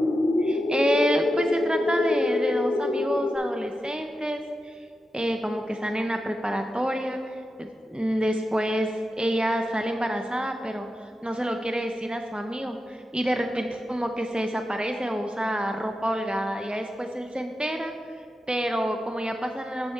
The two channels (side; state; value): both; normal; correlation 0.89